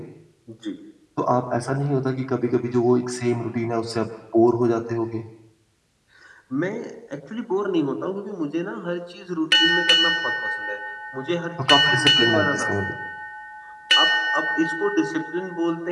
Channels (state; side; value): identical; both; correlation 1.00